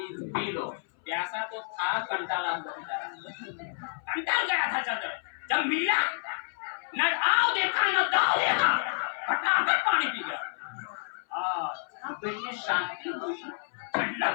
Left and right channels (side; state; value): right; silent; 58 dB below the other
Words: लो। प्यासा तो था, कंटाला हुआ बेचारा, कंटाल गया था चलकर। जब मिला न आओ देखा न दाओ देखा, फटाफट पानी पी गया। दिल में शांति हुई,